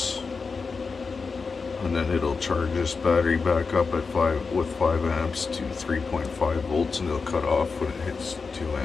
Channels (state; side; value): quieter; right; 4.8 dB